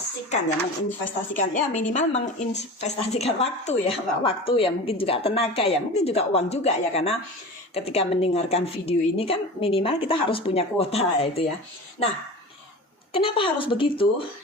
ya, minimal menginvestasikan waktu ya, mungkin juga tenaga ya, mungkin juga uang juga ya, karena ketika mendengarkan video ini kan minimal kita harus punya kuota itu ya. Nah, kenapa harus begitu?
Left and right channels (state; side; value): normal; both; correlation 0.33